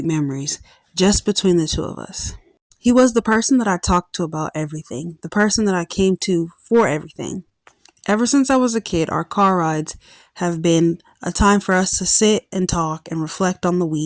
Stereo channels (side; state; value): both; identical; correlation 1.00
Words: memories just between the two of us. He was the person that I talked to about everything, the person that I came to for everything. Ever since I was a kid, our car rides have been a time for us to sit and talk and reflect on the